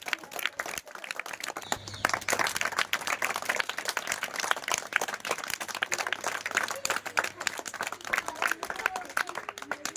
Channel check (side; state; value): both; identical; correlation 1.00